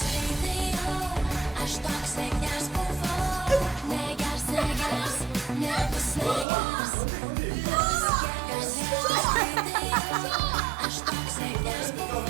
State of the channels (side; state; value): left; drops out; at 6.5 s